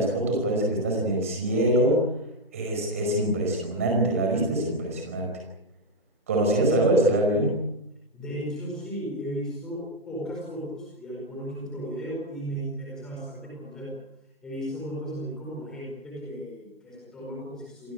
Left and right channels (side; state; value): both; normal; correlation 0.04